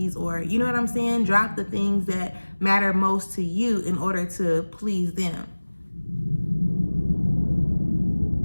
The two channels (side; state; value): both; inverted; correlation -1.00